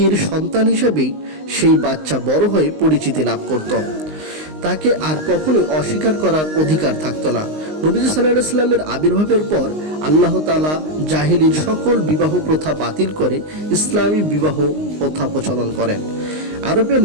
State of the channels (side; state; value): left; late; 19 ms